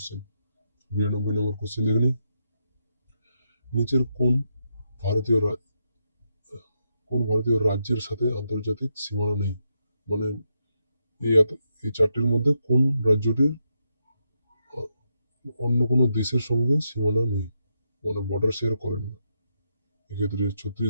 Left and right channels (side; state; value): both; inverted; correlation -0.82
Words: 92 নম্বর কোশ্চেন দেখে নিই, নিচের ভারতীয় কোন ভারতীয় রাজ্যের সাথে আন্তর্জাতিক সীমানা নেই? মানে এই চারটির মধ্যে কোন রাজ্যটির অন্য কোনো দেশের সঙ্গে সীমানা নেই, মানে বর্ডার শেয়ার করেন না? এক্ষেত্রে